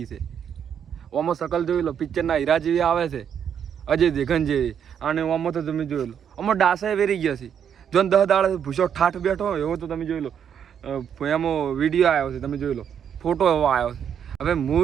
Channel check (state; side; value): quieter; left; 8.3 dB